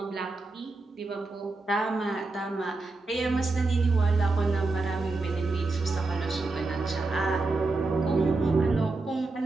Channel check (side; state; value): left; quieter; 3.5 dB